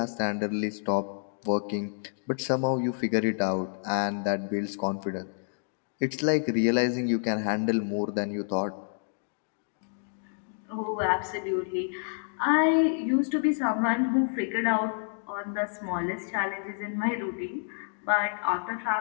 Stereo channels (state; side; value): silent; right; digital silence